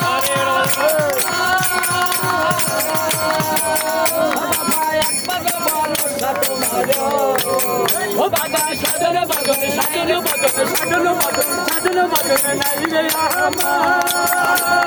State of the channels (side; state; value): both; identical; correlation 1.00